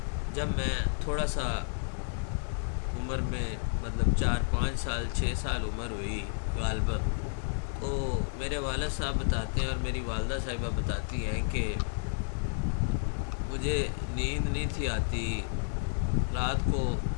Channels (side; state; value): right; silent; digital silence